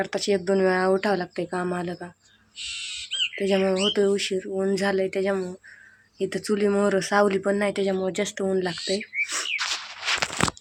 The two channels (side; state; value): both; identical; correlation 1.00